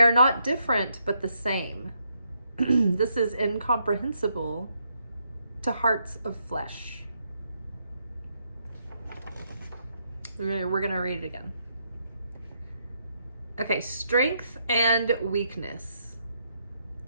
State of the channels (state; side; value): inverted; both; correlation -0.77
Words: not different, but the same. This is incomprehensible to hearts of flesh. We're going to read it again. Okay, strength and weakness.